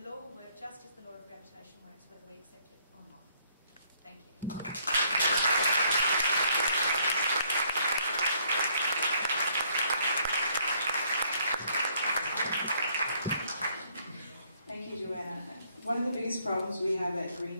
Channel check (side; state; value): both; inverted; correlation -0.66